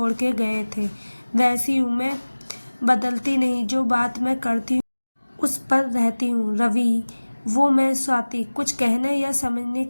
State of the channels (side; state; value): both; inverted; correlation -1.00